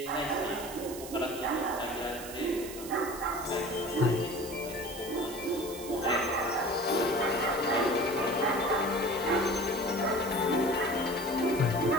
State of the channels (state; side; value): noise; right; hiss, 12 dB below the sound